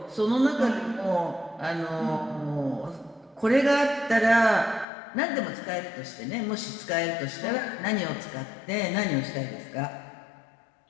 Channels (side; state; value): right; drops out; at 4.9 s